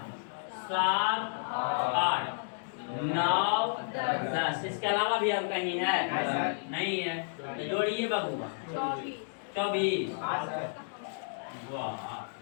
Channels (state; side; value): silent; right; digital silence